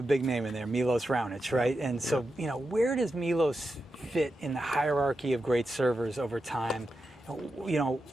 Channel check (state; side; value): normal; both; correlation 0.88